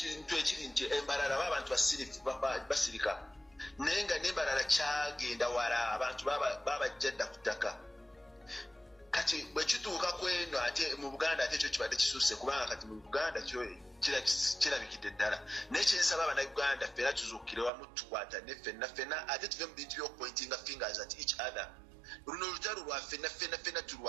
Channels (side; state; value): left; drops out; at 17.7 s